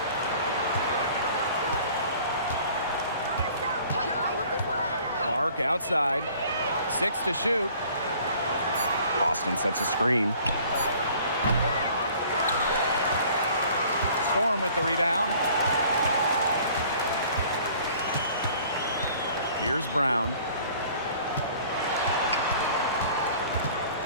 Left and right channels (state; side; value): inverted; both; correlation -0.52